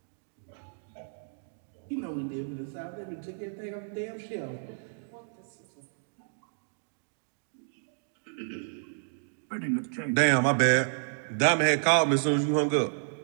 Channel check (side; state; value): left; silent; digital silence